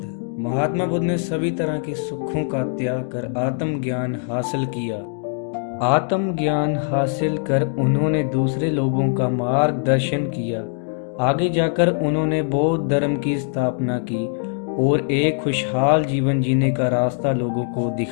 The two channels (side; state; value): right; silent; 58 dB below the other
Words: महात्मा बुद्ध ने सभी तरह के सुखों का त्याग कर आत्मज्ञान हासिल किया। आत्मज्ञान हासिल कर उन्होंने दूसरे लोगों का मार्गदर्शन किया। आगे जाकर उन्होंने बौद्ध धर्म की स्थापना की और एक खुशहाल जीवन जीने का रास्ता लोगों को